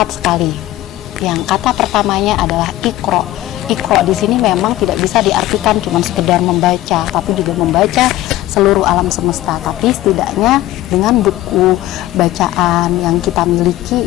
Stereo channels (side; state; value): right; quieter; 15.6 dB